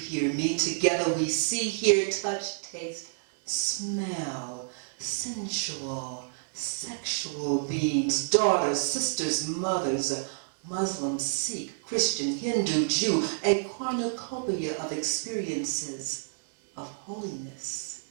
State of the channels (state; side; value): silent; left; digital silence